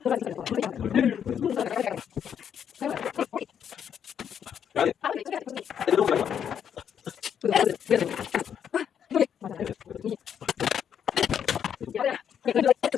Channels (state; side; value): quieter; right; 8.5 dB